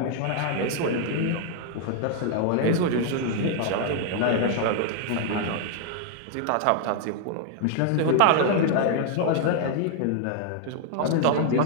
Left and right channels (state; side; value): different; both; correlation 0.00